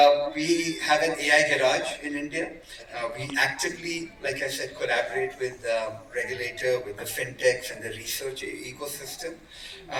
we have an AI garage in India. We actively, like I said, collaborate with the regulator, with the fintechs and the research ecosystem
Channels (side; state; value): both; identical; correlation 1.00